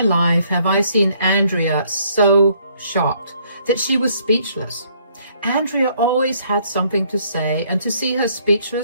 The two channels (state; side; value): inverted; both; correlation -0.66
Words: life have I seen Andrea so shocked that she was speechless. Andrea always had something to say, and to see her